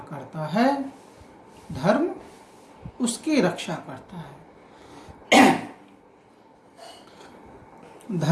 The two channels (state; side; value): identical; both; correlation 1.00